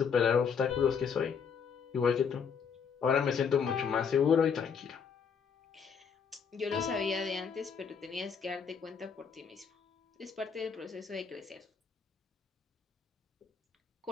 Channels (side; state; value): right; quieter; 6.5 dB